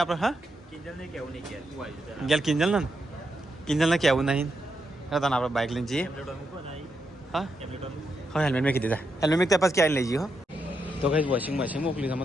હા કિંજલને કેવું નહીં કે તું આવી જા ગેલ કિંજલને કેવું નહીં હા તને આપણે બાઇક લઈને જઈએ ટેમ્પલેટ મૂકો ને હા ટેમ્પલેટ હા હેલ્મેટ મેં કીધી હેલ્મેટ મેં ત્યાં ક્યાં લઈ જઈએ હો તો કઈ વોશિંગ મશીન મોકલી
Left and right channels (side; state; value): both; normal; correlation 0.83